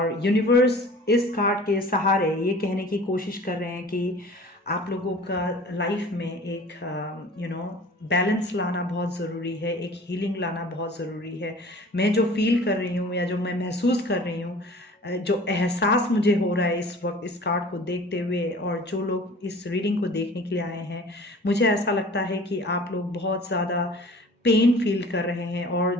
यूनिवर्स इस कार्ड के सहारे ये कहने की कोशिश कर रहे हैं कि आप लोगों का लाइफ में एक बैलेंस लाना बहुत ज़रूरी है, एक हीलिंग लाना बहुत ज़रूरी है। मैं जो फील कर रही हूँ या जो मैं महसूस कर रही हूँ, जो एहसास मुझे हो रहा है इस वक्त इस कार्ड को देखते हुए, और जो लोग इस रीडिंग को देखने के लिए आए हैं, मुझे ऐसा लगता है कि आप लोग बहुत ज़्यादा पेन फील कर रहे हैं,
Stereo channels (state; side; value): normal; both; correlation 0.45